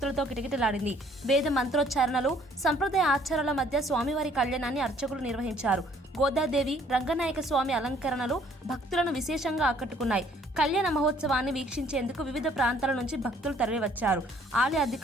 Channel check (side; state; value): both; normal; correlation 0.60